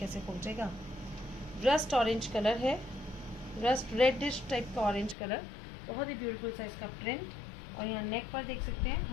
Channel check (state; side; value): drops out; right; at 5.2 s